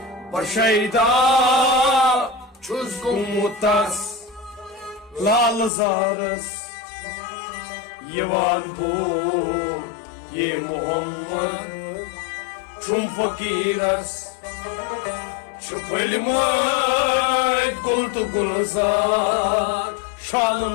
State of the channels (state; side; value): drops out; right; at 5.7 s